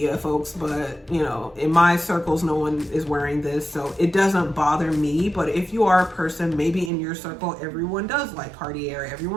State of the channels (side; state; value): left; drops out; at 6.9 s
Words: folks, but you know, in my circles, no one is wearing this, so it doesn't bother me. But if you are a person, maybe in your circle, everyone does like Cartier,